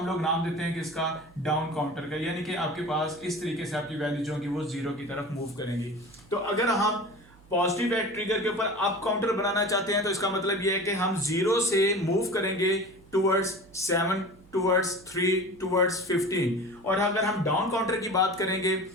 लोग नाम देते हैं किसका, डाउन काउंटर का। यानी कि आपके पास इस तरीके से आपकी वैल्यू जो होगी वो जीरो की तरफ मूव करेंगी। तो अगर हम पॉजिटिव एट ट्रिगर के ऊपर अप काउंटर बनाना चाहते हैं तो इसका मतलब यह है कि हम जीरो से मूव करेंगे टूवर्ड्स 7 टूवर्ड्स 3 टूवर्ड्स 15। और अगर हम डाउन काउंटर की बात करेंगे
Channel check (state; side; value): noise; right; hum, 26 dB below the sound